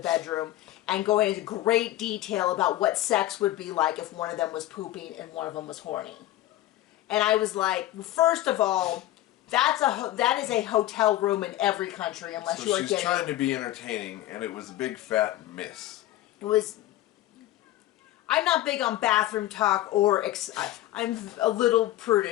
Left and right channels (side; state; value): right; quieter; 14.8 dB